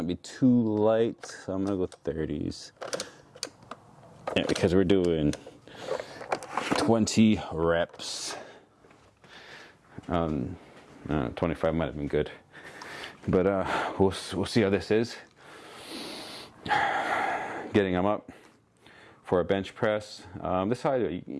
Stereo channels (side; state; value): both; identical; correlation 1.00